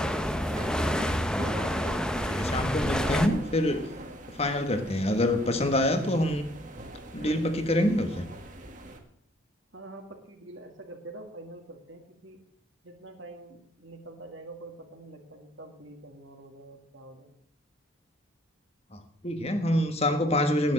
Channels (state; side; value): normal; both; correlation 0.65